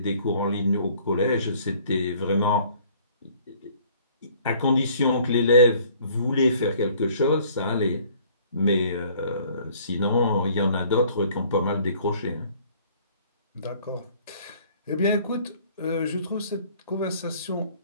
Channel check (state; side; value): inverted; both; correlation -0.56